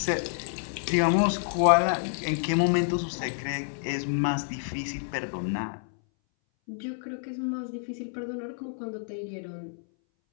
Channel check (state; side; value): silent; right; 59 dB below the other